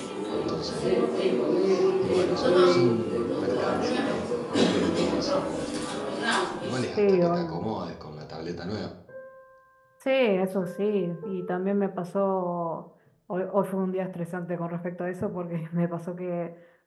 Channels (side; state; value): both; identical; correlation 1.00